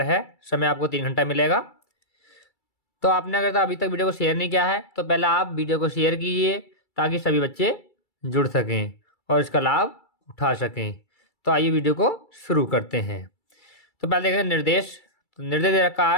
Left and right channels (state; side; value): late; right; 2.3 ms